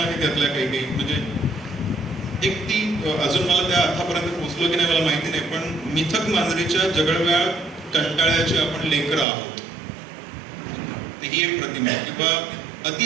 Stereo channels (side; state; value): left; drops out; at 9.2 s